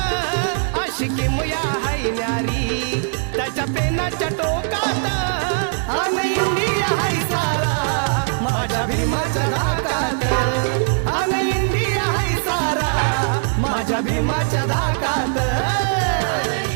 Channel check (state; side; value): silent; left; 57 dB below the other